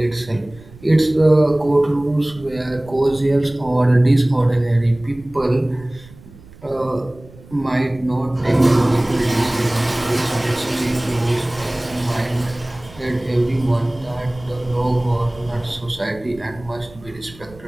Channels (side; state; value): right; noise; rumble, 21 dB below the sound